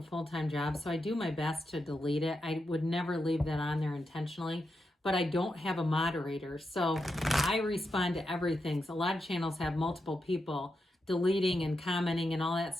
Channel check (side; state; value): both; normal; correlation 0.86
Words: full-time job, so I do my best to delete it. I would never leave that on there intentionally, but I don't have a moderator, so I respond to everything. So a lot of channels have multiple people deleting and commenting and all that